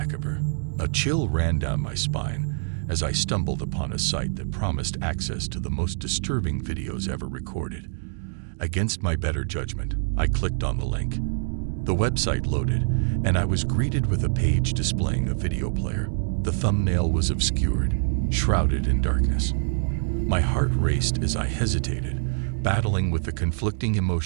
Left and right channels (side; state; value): left; silent; digital silence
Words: A chill ran down my spine as I stumbled upon a site that promised access to the most disturbing videos ever recorded. Against my better judgment, I clicked on the link. The website loaded, and I was greeted with a page displaying a video player. The thumbnail was obscured, shrouded in darkness. My heart raced as I hesitated, battling with the conflicting